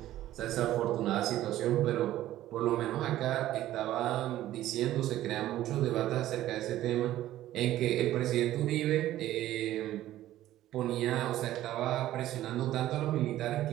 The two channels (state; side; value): quieter; left; 14.0 dB